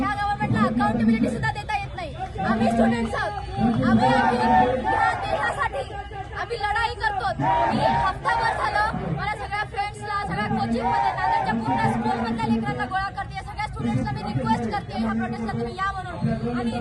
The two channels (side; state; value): both; identical; correlation 1.00